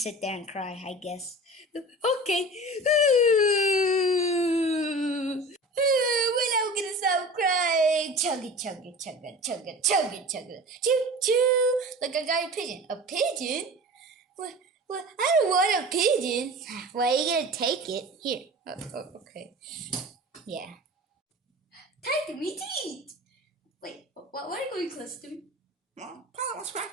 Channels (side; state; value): both; normal; correlation 0.37